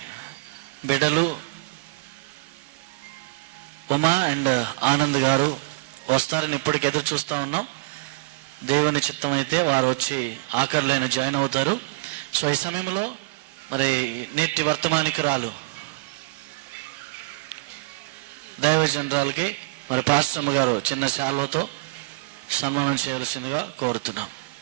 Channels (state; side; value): quieter; left; 24.0 dB